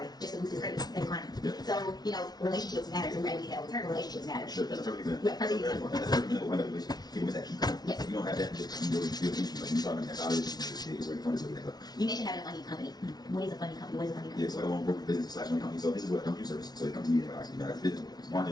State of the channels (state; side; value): late; right; 0.19 ms